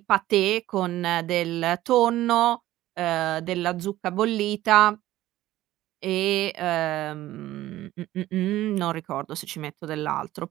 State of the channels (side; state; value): left; quieter; 15.1 dB